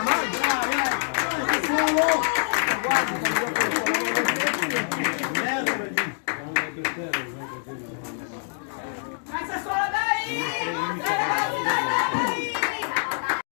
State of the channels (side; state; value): right; silent; digital silence